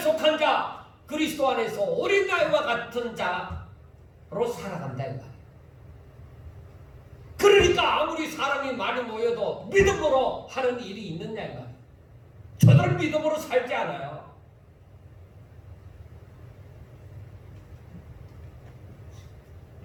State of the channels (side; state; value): both; identical; correlation 1.00